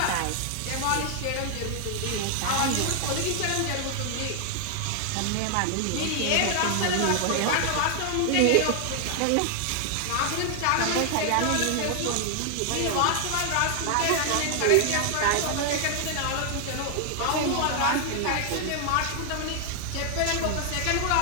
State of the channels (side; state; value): both; different; correlation 0.00